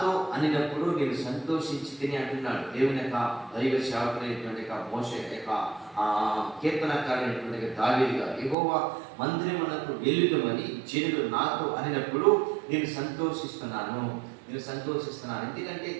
అనినప్పుడు నేను సంతోషించి తిని అంటున్నాడు దేవుని యొక్క దైవ సేవకుడైనటువంటి మోషే యొక్క కీర్తనకారైనటువంటి దావీదు గారు. యెహోవా మందిరమునకు వెళ్ళుదమని జనులు నాతో అనినప్పుడు నేను సంతోషిస్తున్నాను. ఎందుకంటే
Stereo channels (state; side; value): drops out; left; at 8.6 s